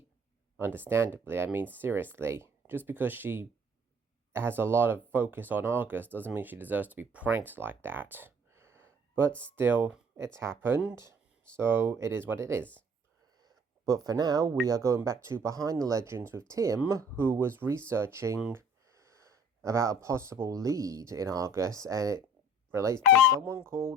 understandably. I mean, seriously, just because she has a lot of focus on ARGUS doesn't mean she deserves to be pranked like that. But still, it's happened, so it is what it is. But for now, we are going back to Behind the Legends with Tim, who was researching about a possible lead in Argus, and it relates to someone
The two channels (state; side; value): normal; both; correlation 0.54